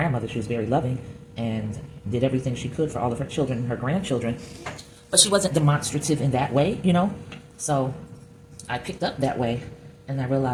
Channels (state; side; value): identical; both; correlation 1.00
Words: She was very loving and did everything she could for all of her children and her grandchildren. But she wasn't demonstrative in that way, you know? So I picked up that way, and I